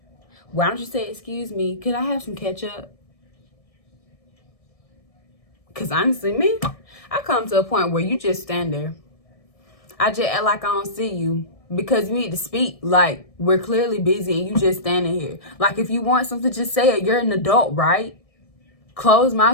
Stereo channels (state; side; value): late; right; 1.7 ms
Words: Why don't you say, excuse me, could I have some ketchup? Because honestly, me, I come to a point where you just stand there. I just act like I don't see you. Because you need to speak. Like, we're clearly busy and you just standing here. Like, if you want something, just say it. You're an adult, right? Closed